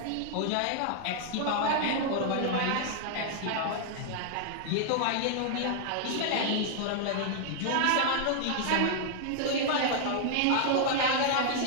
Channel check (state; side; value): different; both; correlation -0.01